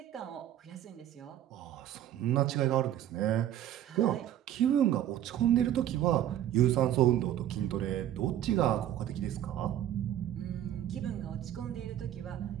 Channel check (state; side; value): quieter; left; 11.7 dB